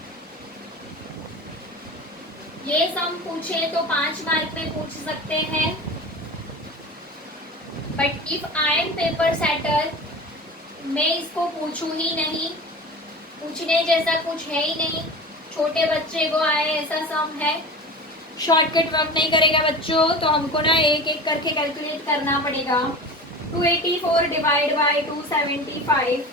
ये सम पूछे तो 5 मार्क में पूछ सकते हैं, but if I M paper setter मैं इसको पूछूं ही नहीं, पूछने जैसा कुछ है ही नहीं। छोटे बच्चे को आए ऐसा सम है, शॉर्टकट वर्क नहीं करेगा बच्चों, तो हमको ना एक एक करके कैलकुलेट करना पड़ेगा। 284 डिवाइड बाय 275,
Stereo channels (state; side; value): normal; both; correlation 0.33